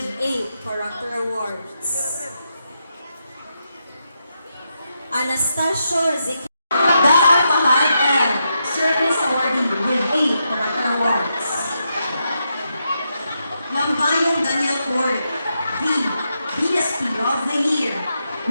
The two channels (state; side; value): inverted; both; correlation -0.83